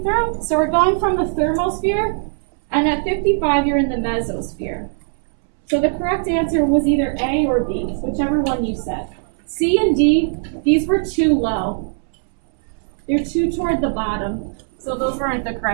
through. So we're going from the thermosphere, and at 55 you're in the mesosphere. So the correct answer was either A or B, whichever one you said. C and D, these were too low. They're too toward the bottom. So those weren't the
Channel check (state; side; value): silent; left; 66 dB below the other